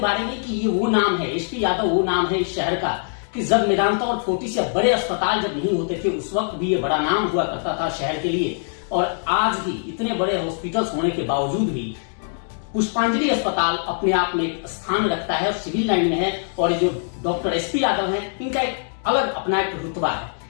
बारे में कि ये वो नाम है, एसपी यादव वो नाम है इस शहर का कि जब मेदांता और फोर्टिस या बड़े अस्पताल जब नहीं होते थे उस वक्त भी ये बड़ा नाम हुआ करता था शहर के लिए। और आज भी इतने बड़े हॉस्पिटल्स होने के बावजूद भी पुष्पांजलि अस्पताल अपने आप में एक स्थान रखता है और सिविल लाइन में है। और जो डॉक्टर एसपी यादव है इनका एक अलग अपना एक रुतबा है।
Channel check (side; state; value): right; silent; digital silence